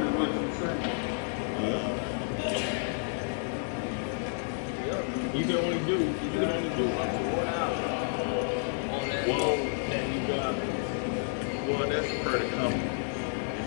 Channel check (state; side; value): silent; right; digital silence